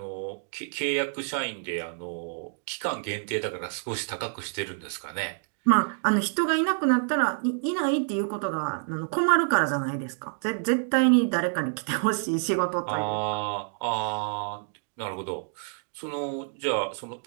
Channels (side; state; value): left; silent; digital silence